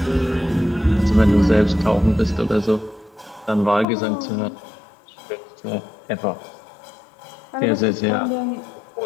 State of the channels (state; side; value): drops out; right; at 3.9 s